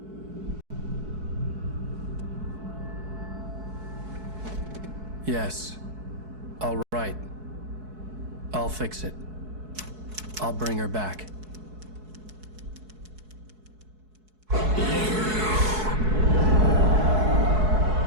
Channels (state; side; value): late; left; 4.7 ms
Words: Yes. All right. I'll fix it. I'll bring her back.